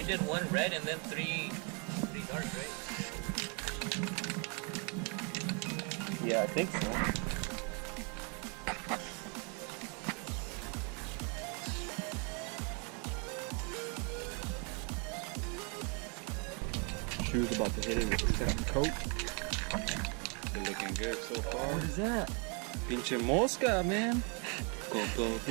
did 1 red and then 3 dark, right? Yeah, I think so. Shoes about to hit it with the second coat. They're looking good so far. What is that? Pinche mosca, man. Go,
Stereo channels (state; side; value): quieter; left; 35.8 dB